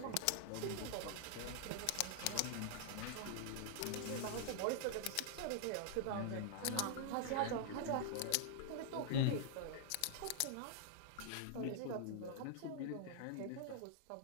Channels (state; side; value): different; both; correlation 0.00